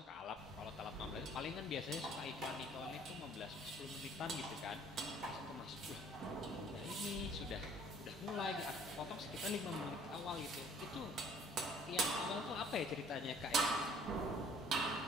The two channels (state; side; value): normal; both; correlation 0.55